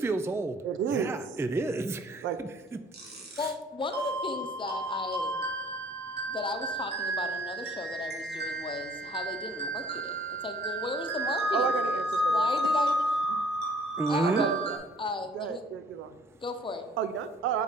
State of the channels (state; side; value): normal; both; correlation 0.55